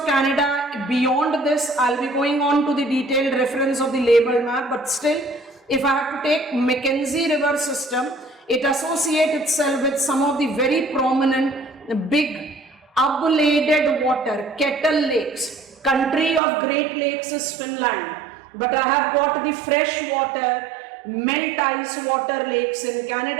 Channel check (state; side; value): drops out; left; at 16.4 s